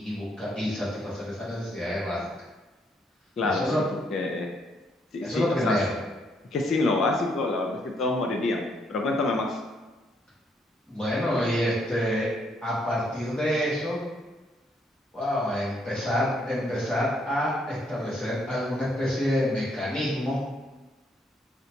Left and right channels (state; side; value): normal; both; correlation 0.72